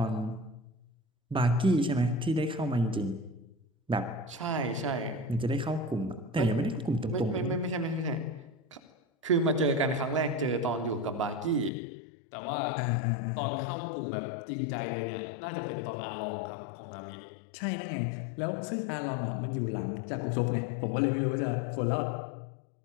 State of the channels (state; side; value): drops out; right; at 11.7 s